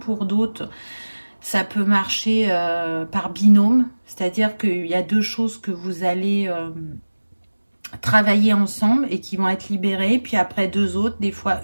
d'autres, ça peut marcher par binôme. C'est-à-dire qu'il y a deux choses que vous allez travailler ensemble et qui vont être libérées, puis après deux autres, des fois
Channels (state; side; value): inverted; both; correlation -1.00